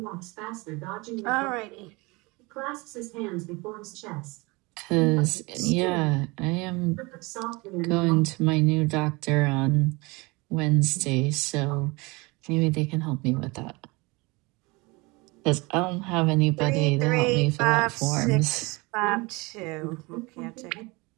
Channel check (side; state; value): left; quieter; 25.4 dB